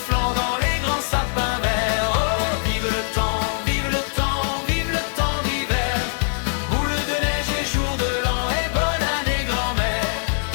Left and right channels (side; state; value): right; silent; digital silence